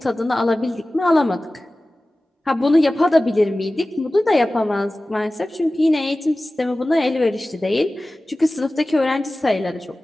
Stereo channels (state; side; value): normal; both; correlation 0.97